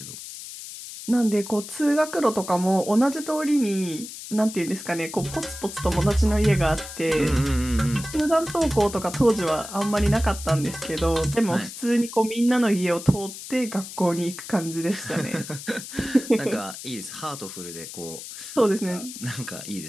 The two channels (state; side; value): noise; left; hiss, 11 dB below the sound